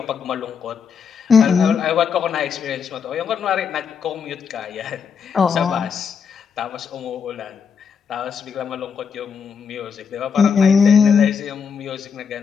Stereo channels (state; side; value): quieter; right; 6.5 dB